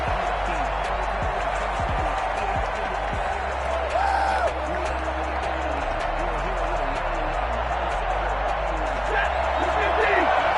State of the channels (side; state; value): both; identical; correlation 1.00